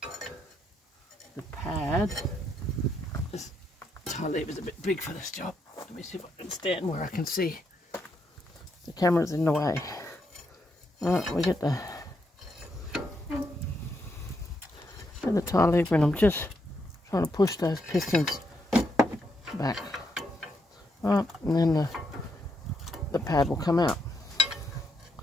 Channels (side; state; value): both; normal; correlation 0.79